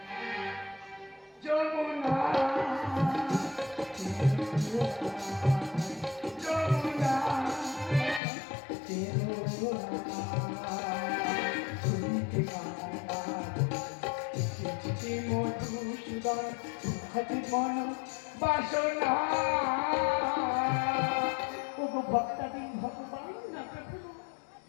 যমুনা, যমুনা, কেঁদো না। শুনতে এসেছে মধুসূদন, হাতে মন বাসনা। ওগো ভক্তাধীন ভগবান না প্রভু,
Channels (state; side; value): drops out; right; at 8.2 s